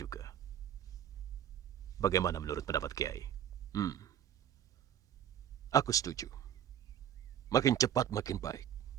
Bagaimana menurut pendapat Kiai? Aku setuju. Makin cepat makin baik.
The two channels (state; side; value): quieter; left; 10.2 dB